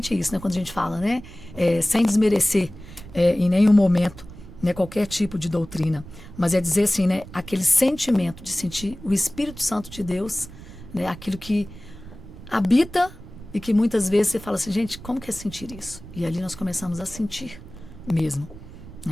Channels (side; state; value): right; noise; rumble, 16 dB below the sound